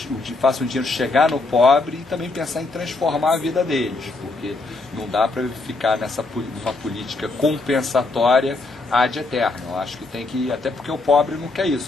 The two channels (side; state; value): right; quieter; 3.4 dB